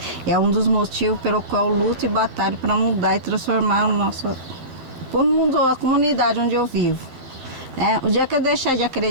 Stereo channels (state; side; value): late; left; 12 ms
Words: É um dos motivos pelo qual eu luto e batalho para mudar e transformar o mundo, a comunidade onde eu vivo. O dia que eu deixar de